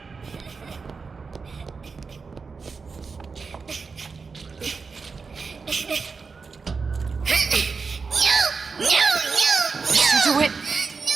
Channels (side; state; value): left; quieter; 4.8 dB